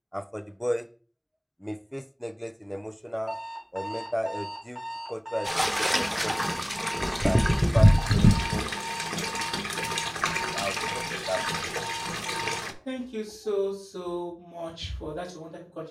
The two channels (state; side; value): identical; both; correlation 1.00